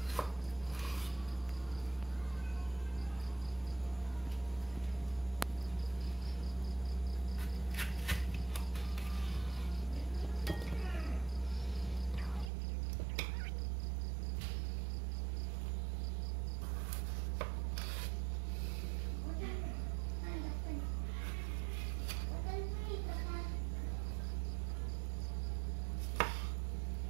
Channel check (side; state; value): left; drops out; at 12.5 s